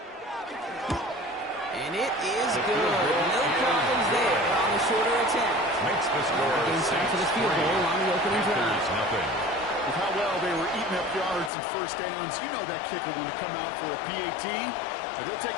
And it is good. No problems there on the shorter attempt. Makes the score Game time for the field goal on the opening drive. With how well they were eating up yards and first downs, you know that kicker want to come out for a PAT, but he'll take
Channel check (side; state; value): right; drops out; at 11.5 s